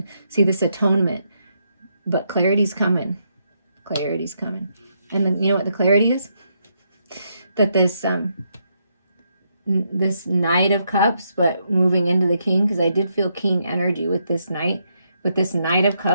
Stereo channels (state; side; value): inverted; both; correlation -0.78